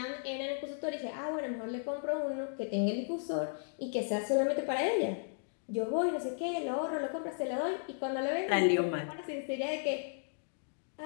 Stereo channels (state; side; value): silent; right; digital silence